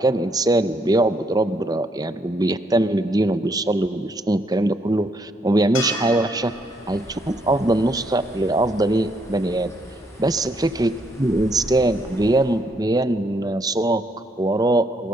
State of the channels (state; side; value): normal; both; correlation 0.72